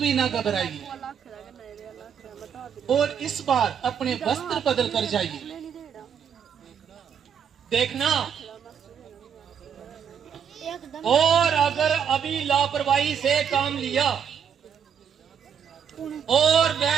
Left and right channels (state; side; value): quieter; left; 7.8 dB